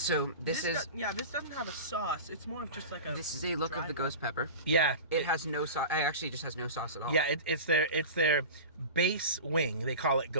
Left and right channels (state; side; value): inverted; both; correlation -0.31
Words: this doesn't have a sauce. It's more of just like a. This is a look of the ghost pepper. Yeah, it has no sauce. It actually just has no sauce at all. Yeah, it's their base wing. They call it